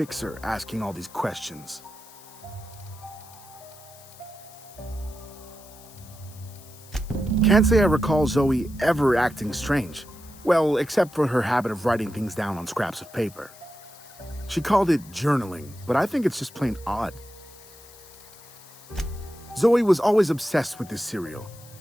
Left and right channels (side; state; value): left; noise; hiss, 21 dB below the sound